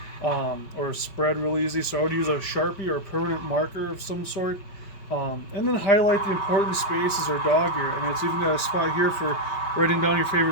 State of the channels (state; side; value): late; right; 5.1 ms